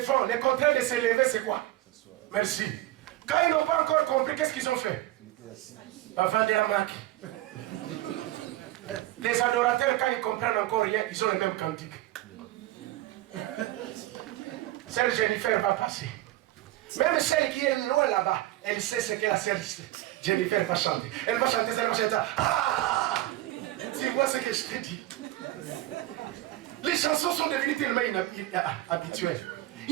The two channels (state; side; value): quieter; left; 16.1 dB